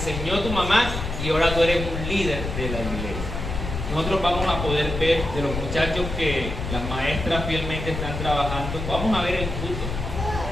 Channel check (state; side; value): noise; left; rumble, 5 dB below the sound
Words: tu mamá y ahora tú eres un líder de la iglesia. Nosotros vamos a poder ver de los muchachos que las maestras fielmente están trabajando, vamos a ver el fruto.